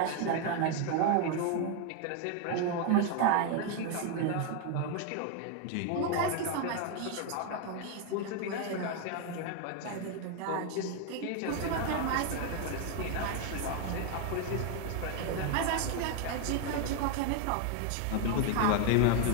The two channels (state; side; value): different; both; correlation 0.01